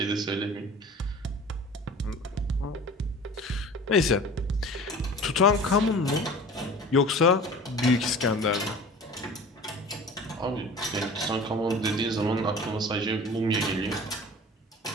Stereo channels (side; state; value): both; normal; correlation 0.41